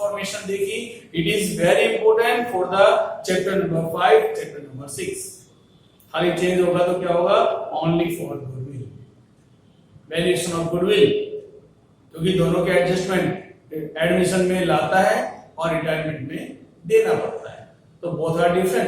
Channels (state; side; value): identical; both; correlation 1.00